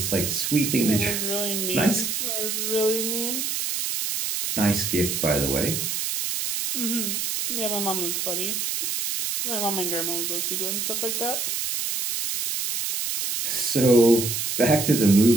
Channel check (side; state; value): right; noise; hiss, 1 dB below the sound